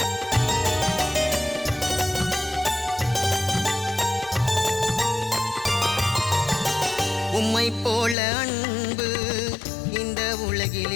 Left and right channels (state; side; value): drops out; right; at 8.2 s